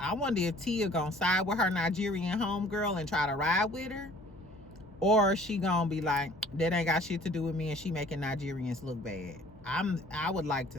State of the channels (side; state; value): left; noise; hum, 26 dB below the sound